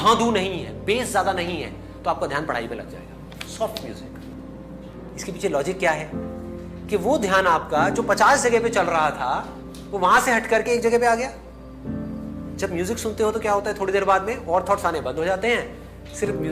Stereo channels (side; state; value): both; identical; correlation 1.00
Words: नहीं है, बेस ज्यादा नहीं है, तो आपका ध्यान पढ़ाई में लग जाएगा। सॉफ्ट म्यूजिक, इसके पीछे लॉजिक क्या है कि वो ध्यान आपका जो 50 जगह पे चल रहा था वो वहां से हट करके एक जगह पे आ गया। जब म्यूजिक सुनते हो तो क्या होता है, थोड़ी देर बाद में और थॉट्स आने बंद हो जाते हैं, सिर्फ